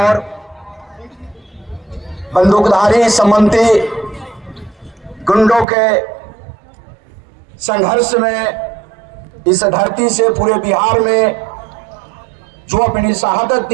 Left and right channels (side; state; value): left; drops out; at 5.7 s